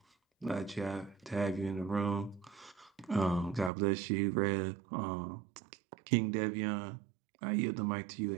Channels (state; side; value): drops out; left; at 3.7 s